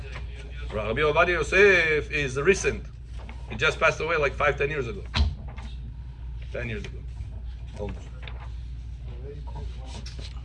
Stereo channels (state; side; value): identical; both; correlation 1.00